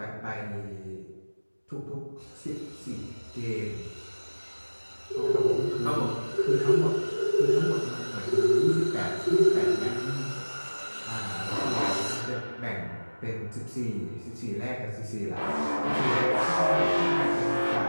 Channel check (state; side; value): inverted; both; correlation -1.00